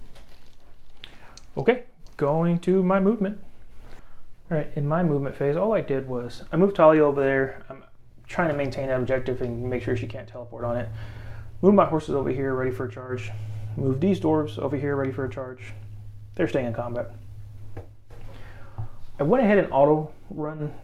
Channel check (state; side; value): identical; both; correlation 1.00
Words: Okay, going to my movement. All right, in my movement phase, all I did was I moved Talia over there. I'm trying to maintain that objective and make sure she can't teleport on it. Move my horses over here, ready for a charge. Move these dwarves over here, ready for a charge. They're staying in combat. I went ahead and auto run,